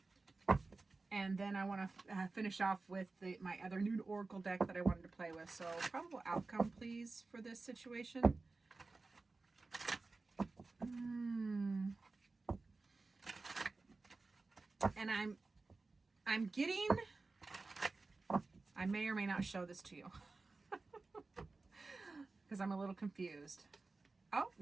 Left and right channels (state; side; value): quieter; left; 3.7 dB